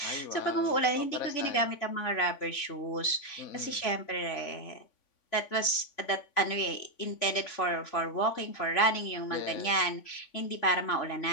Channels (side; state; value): right; late; 3.5 ms